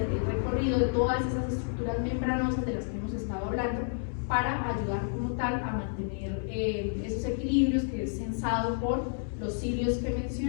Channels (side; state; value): right; silent; digital silence